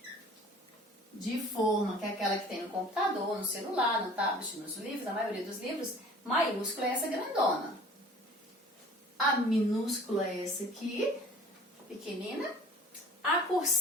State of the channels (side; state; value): both; normal; correlation 0.47